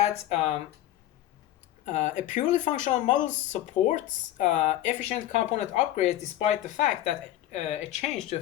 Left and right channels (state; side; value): quieter; right; 13.7 dB